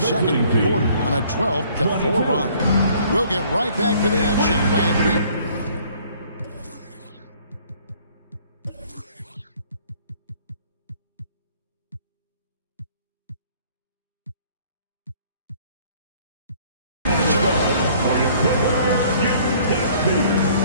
quarter on a 12-4 run. We'll get right back to the action when we...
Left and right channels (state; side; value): inverted; both; correlation -0.57